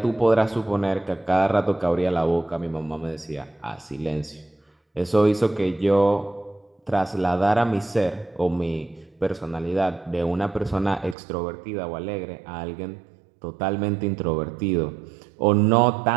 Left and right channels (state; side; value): drops out; left; at 11.2 s